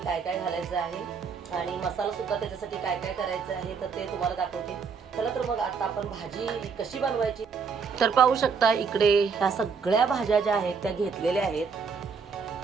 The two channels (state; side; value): quieter; left; 5.6 dB